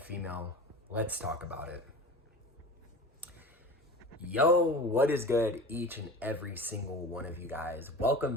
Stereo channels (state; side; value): normal; both; correlation 0.35